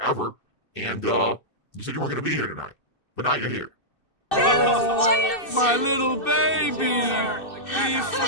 And you said you weren't going to be here tonight. But now you're here. My little baby! We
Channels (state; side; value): late; right; 2.6 ms